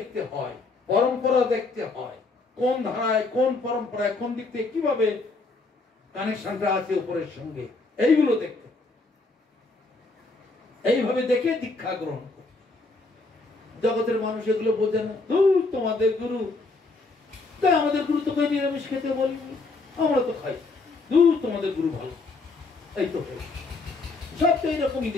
হয়, পরম্পরা দেখতে হয়, কোন ধারায় কোন পরম্পরায় কোন দিক থেকে কিভাবে কানেকশনটা আছে উপরের সঙ্গে, এইগুলো দেখতে, এইভাবে দেখে দীক্ষা গ্রহণ করে। জগতের মানুষ এগুলো বোঝে না, দূর তোমাদের গুরু, তাই আমাদের গুরু তোকে নিরামিষ খেতে বলিনি, আমরা তো খাই, দূর তোমাদের গুরু ভালো, এই তো সব তো এইরকমই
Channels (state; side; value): quieter; right; 3.5 dB